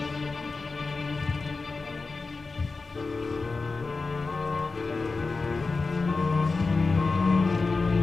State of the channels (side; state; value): right; quieter; 4.0 dB